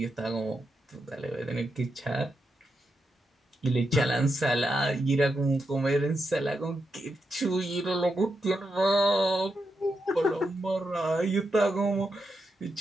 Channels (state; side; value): normal; both; correlation 0.85